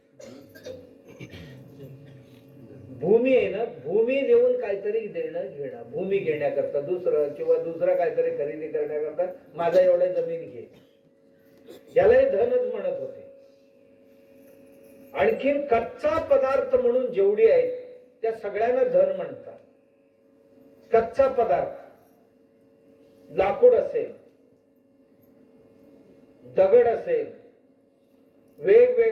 भूमी आहे ना, भूमी देऊन काहीतरी देणं घेणं, भूमी घेण्याकरता दुसरं किंवा दुसरं काहीतरी खरेदी करण्याकरता माझा एवढ्या जमीन घे, यालाही धनच म्हणत होते. आणखीन कच्चा पदार्थ म्हणून जेवढी आहेत त्या सगळ्यांना धन म्हणतात. कच्चा पदार्थ, लाकूड असेल, दगड असेल,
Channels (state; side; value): identical; both; correlation 1.00